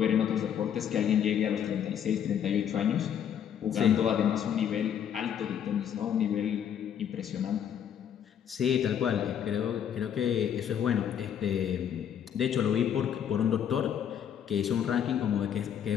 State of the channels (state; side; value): quieter; right; 9.0 dB